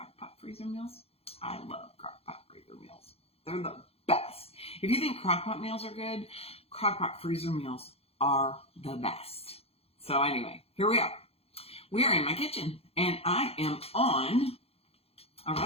freezer meals? I love crock-pot freezer meals. They're the best. If you think crock-pot meals are good, crock-pot freezer meals are the best. So anyway, here we are. We are in my kitchen, and I am on a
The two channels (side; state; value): right; late; 0.29 ms